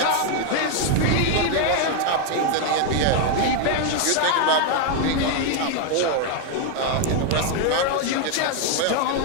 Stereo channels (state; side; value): different; both; correlation 0.00